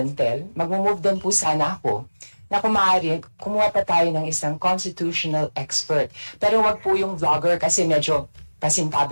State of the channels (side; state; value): both; inverted; correlation -1.00